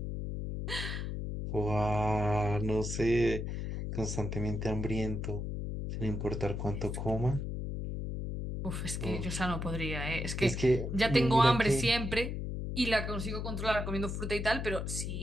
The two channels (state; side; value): noise; left; hum, 4 dB below the sound